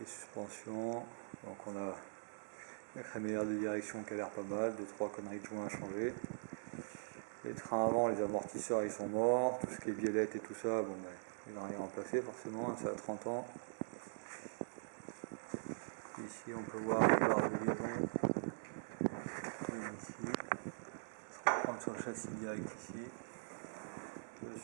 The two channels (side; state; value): left; silent; digital silence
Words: suspensions. Donc on a la crémaillère de direction qui a l'air pas mal, 2-3 conneries de joints à changer. Les trains avant, les amortisseurs ils sont morts, tout ce qui est biellette et tout ça, bon ben, il n'a rien remplacé forcément, ça a 30 ans. Ici on peut voir les barres de liaison. Ici, on va reprendre sur le châssis direct ici. Le